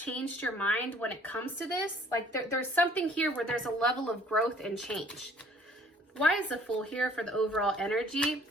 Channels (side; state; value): both; normal; correlation 0.56